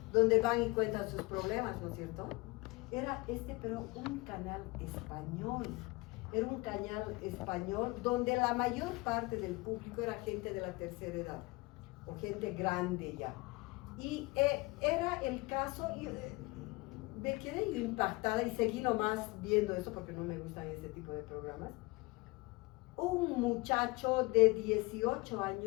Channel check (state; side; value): quieter; right; 24.0 dB